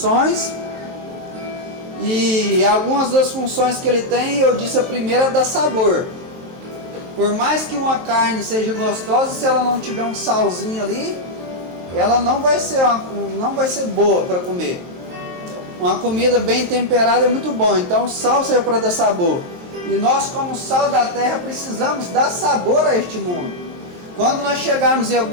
e algumas das funções que ele tem, eu disse a primeira é dar sabor. Por mais que uma carne seja gostosa, se ela não tiver um salzinho ali, ela não vai ser boa para comer. Uma comida bem temperada é muito bom, então o sal serve para dar sabor. E nós, como sal da terra, precisamos dar sabor a este mundo. Quando nós chegarmos em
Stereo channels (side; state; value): left; late; 23 ms